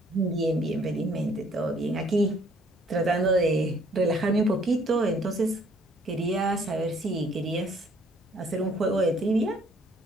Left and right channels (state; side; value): normal; both; correlation 0.61